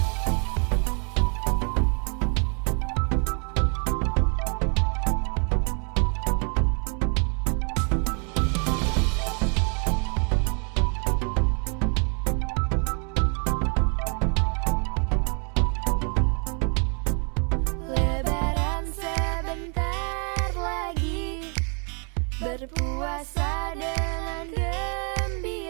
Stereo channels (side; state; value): left; quieter; 38.6 dB